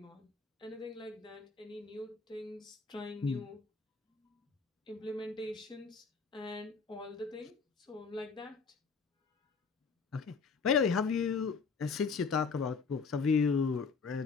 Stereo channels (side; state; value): right; quieter; 5.1 dB